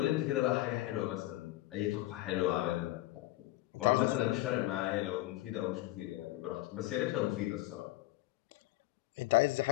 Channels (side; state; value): right; quieter; 17.2 dB